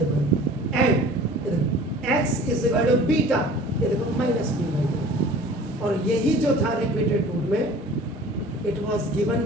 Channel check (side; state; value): both; normal; correlation 0.45